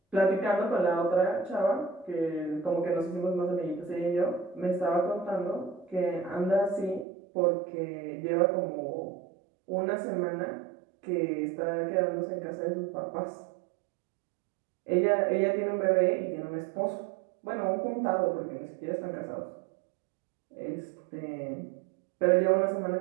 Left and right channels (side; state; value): left; drops out; at 7.1 s